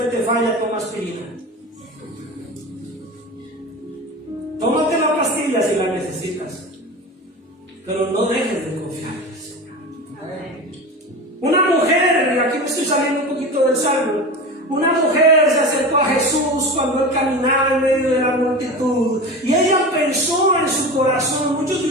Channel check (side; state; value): both; normal; correlation 0.29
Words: te falla, toma aspirina. Tómate la pastilla si la necesitas, pero no dejes de confiar en el Señor. Una mujer, y aquí me estoy saliendo un poquito del salmo, una mujer se acercó a Jesús cuando él caminaba en medio de la multitud y ella pensó en su corazón. Muchos de